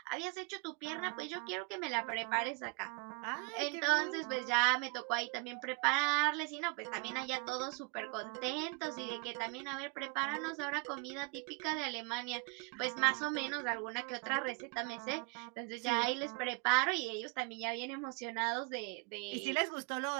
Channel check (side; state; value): left; quieter; 30.4 dB